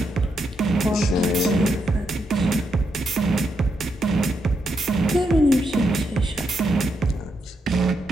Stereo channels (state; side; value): normal; both; correlation 0.81